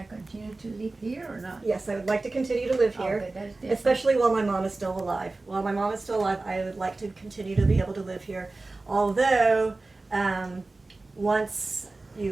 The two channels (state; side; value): quieter; left; 3.3 dB